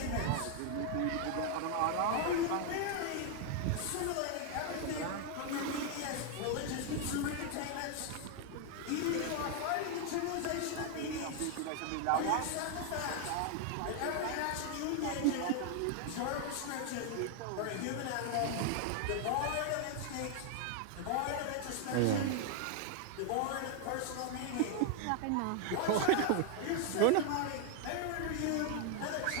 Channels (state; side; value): different; both; correlation 0.00